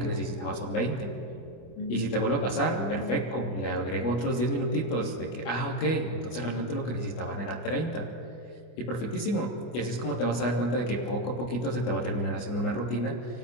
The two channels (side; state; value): right; late; 24 ms